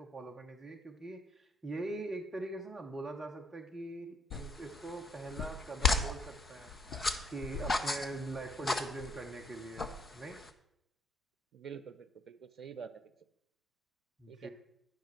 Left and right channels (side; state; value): both; normal; correlation 0.69